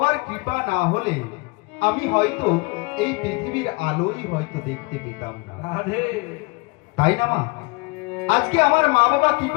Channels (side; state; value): right; quieter; 27.1 dB